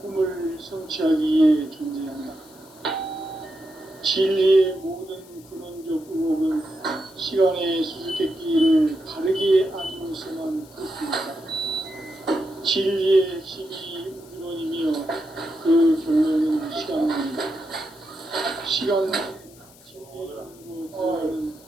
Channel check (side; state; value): left; noise; hiss, 24 dB below the sound